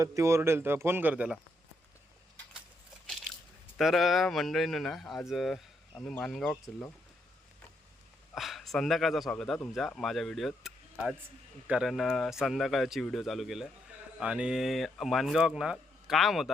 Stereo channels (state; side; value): normal; both; correlation 0.77